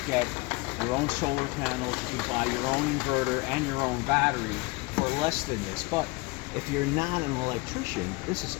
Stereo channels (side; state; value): right; quieter; 25.4 dB